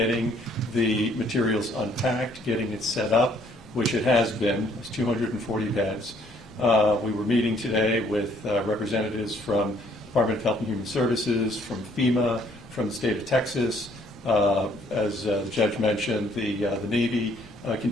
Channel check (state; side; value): normal; both; correlation 0.64